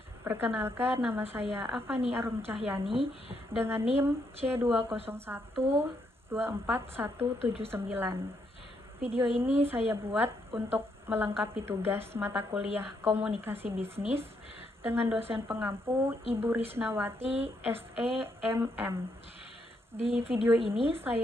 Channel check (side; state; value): both; normal; correlation 0.76